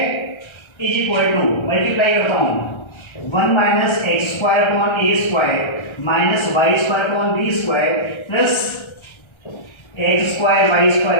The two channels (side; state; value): right; late; 1.3 ms